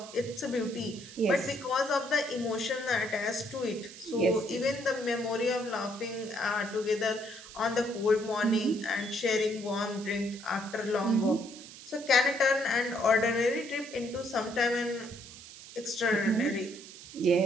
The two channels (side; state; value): right; noise; hiss, 16 dB below the sound